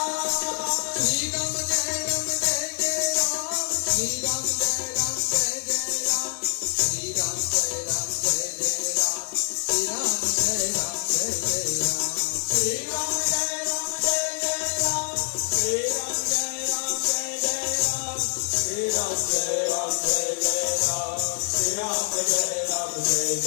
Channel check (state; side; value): silent; right; digital silence